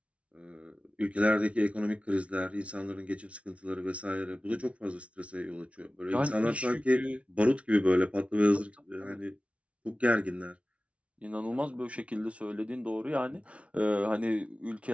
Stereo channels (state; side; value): late; left; 0.062 ms